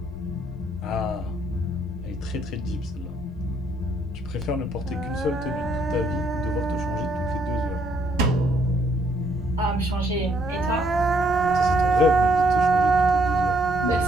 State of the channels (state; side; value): normal; both; correlation 0.69